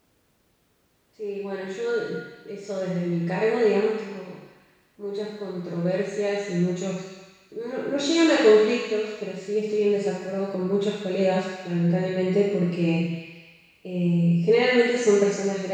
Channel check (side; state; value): both; identical; correlation 1.00